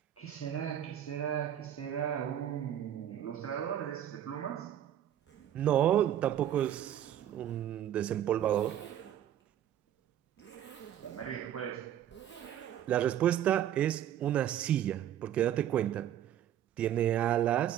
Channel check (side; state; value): left; quieter; 11.0 dB